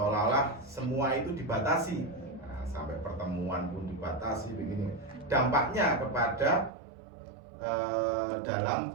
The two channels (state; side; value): drops out; left; at 6.7 s